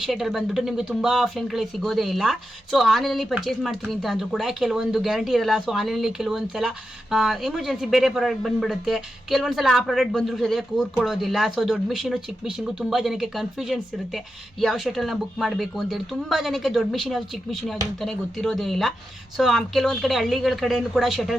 ಶಟಲ್ ಬಂದ್ಬಿಟ್ಟು ನಿಮಗೆ ತುಂಬ ಆಫ್ಲೈನ್ಗಳಿಗೆ ಸಿಗೋದೇ ಇಲ್ಲ. ಆನ್ಲೈನಲ್ಲಿ ಪರ್ಚೇಸ್ ಮಾಡ್ತೀನಿ ಅಂತ ಅಂದ್ರೂ ಕೂಡ ಕೆಲವೊಂದು ಗ್ಯಾರಂಟಿ ಇರಲ್ಲ. ಆನ್ಲೈನಲ್ಲಿ ಕೆಲವೊಂದು ಸಲ ಎಮರ್ಜೆನ್ಸಿ ಬೇರೆ ಪ್ರಾಡಕ್ಟ್ ಬಂದ್ಬಿಡುತ್ತೆ, ಕೆಲವೊಂದು ಸಲ ಆ ಪ್ರಾಡಕ್ಟ್ ಬಂದರೂ ಸರಿಯಾಗಿ ಕೂರ್ಕೊಳ್ಳೋದಿಲ್ಲ. ದೊಡ್ಡ ಮಿಷಿನು ಚಿಕ್ಕ ಮಿಷಿನ್ಗೂ ತುಂಬ ಜನಕ್ಕೆ ಕನ್ಫ್ಯೂಷನ್ಸ್ ಇರುತ್ತೆ, ಯಾವ ಶಟಲ್ನ ಬುಕ್ ಮಾಡಬೇಕು ಅಂತೇಳಿ. ತುಂಬ ಜನಕ್ಕೆ ದೊಡ್ಡ ಮಿಷಿನ್ ಯಾವುದು ಚಿಕ್ಕ ಮಿಷಿನ್ ಯಾವುದು ಅಂತಲೇ ಗೊತ್ತಿರೋದೇ ಇಲ್ಲ. ಕೆಲವೊಂದು ಕಡೆ ಹಳ್ಳಿಗಳ ಕಡೆಯೂ ಕೂಡ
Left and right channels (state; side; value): normal; both; correlation 0.88